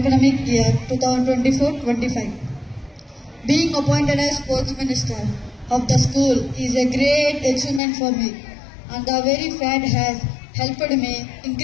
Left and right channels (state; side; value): drops out; right; at 7.8 s